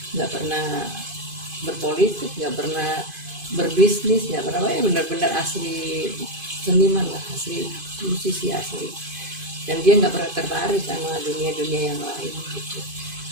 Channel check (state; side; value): late; left; 2.5 ms